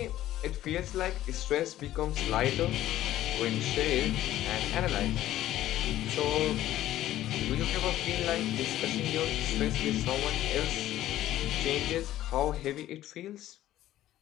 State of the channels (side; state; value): right; quieter; 13.7 dB